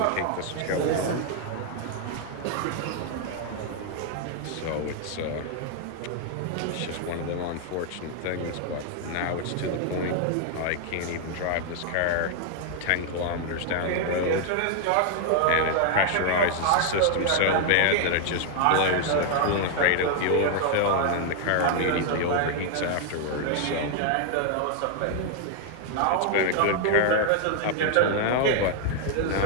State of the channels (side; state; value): both; different; correlation 0.00